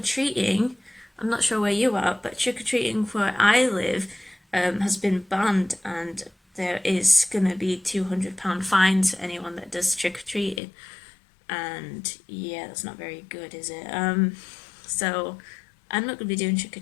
I'm not sure where you are, but trick-or-treating where I live has been banned, and there is going to be £200 fines for anyone that does trick-or-treating. And yeah, that's not very good, is it? So I'm not going to be doing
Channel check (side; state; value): right; drops out; at 10.6 s